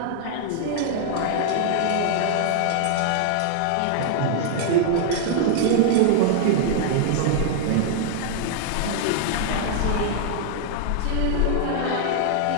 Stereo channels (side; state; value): both; different; correlation -0.01